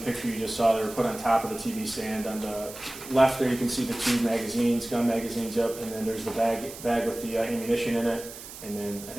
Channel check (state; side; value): noise; right; hiss, 14 dB below the sound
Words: you just saw. They were put on top of the TV stand. On the left there you can see the 2 magazines, gun magazines up, and then there's the bag with the ammunition in it. And then I